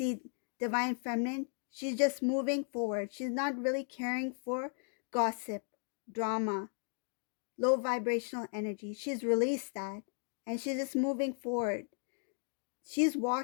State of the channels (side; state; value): right; silent; 54 dB below the other